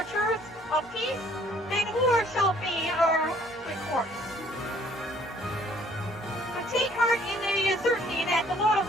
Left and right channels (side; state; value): both; normal; correlation 0.60